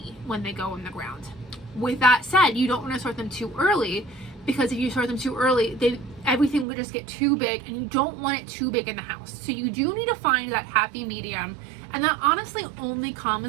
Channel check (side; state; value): left; drops out; at 6.7 s